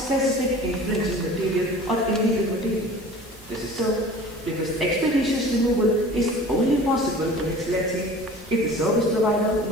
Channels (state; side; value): normal; both; correlation 0.43